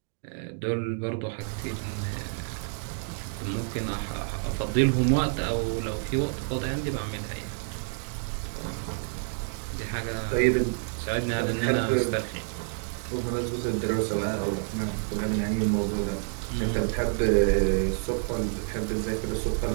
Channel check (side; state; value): left; silent; digital silence